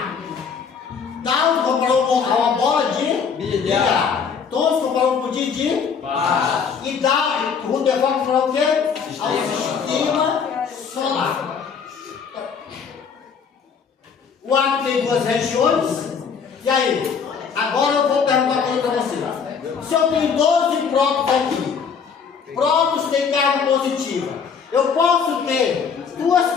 Tal comparou uma bola de bilhar. Todos comparou com o de baixo. E o Rutherford comparou o quê? Ao sistema solar. O átomo tem duas regiões. E aí? Agora eu vou perguntar uma coisa para vocês. Se eu tenho 12 prótons aqui, prótons têm carga positiva, eu posso ter duas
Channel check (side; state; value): right; quieter; 6.3 dB